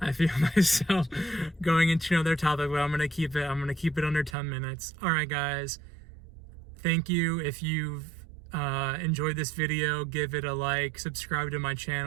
feel myself going into another topic, but I'm gonna keep it under 10 minutes. All right, guys. Thank you. If you've enjoyed this video, give it a like, subscribe to my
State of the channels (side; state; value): left; drops out; at 4.4 s